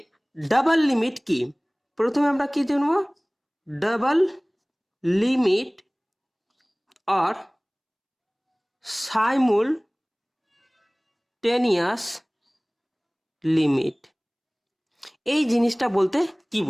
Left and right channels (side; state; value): both; identical; correlation 1.00